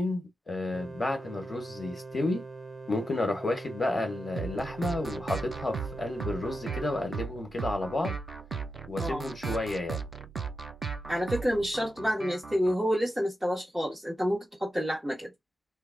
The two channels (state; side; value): normal; both; correlation 0.89